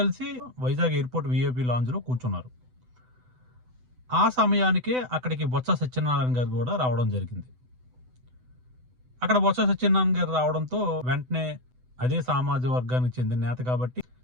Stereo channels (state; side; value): late; left; 8.0 ms